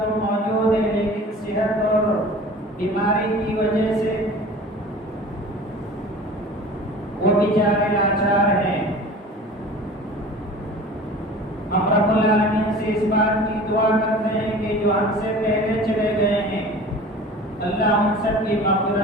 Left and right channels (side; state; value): both; normal; correlation 0.41